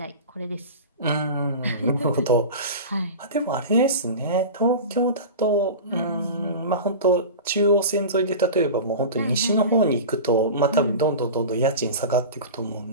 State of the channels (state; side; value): inverted; both; correlation -0.30